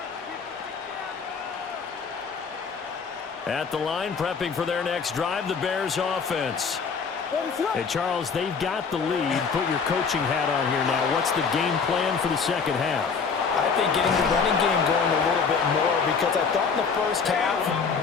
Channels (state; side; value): quieter; right; 5.6 dB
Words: At the line, prepping for their next drive, the Bears offense. Hey, Charles, they've got the lead. Put your coaching hat on here now. What's the game plan for the second half? I think getting the running game going a little bit more, because I thought in the first half